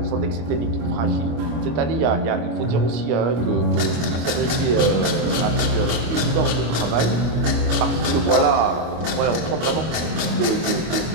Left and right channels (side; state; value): left; late; 25 ms